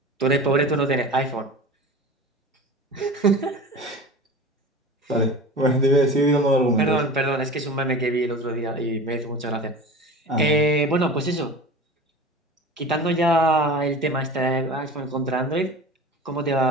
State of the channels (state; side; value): normal; both; correlation 0.35